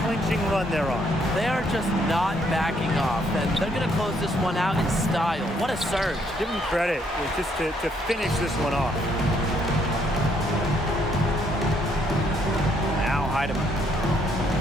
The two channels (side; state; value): both; normal; correlation 0.70